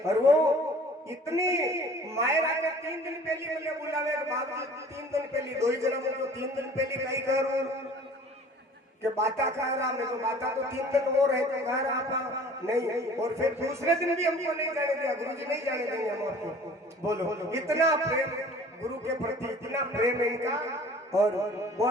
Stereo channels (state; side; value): normal; both; correlation 0.48